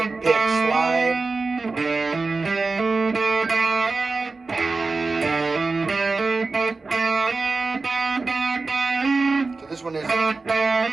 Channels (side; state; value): left; quieter; 3.9 dB